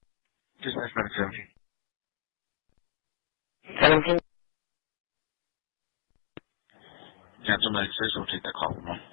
Dispatch 17. 17. Cancel medic 6, we'll take that call from him.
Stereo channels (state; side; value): silent; right; 56 dB below the other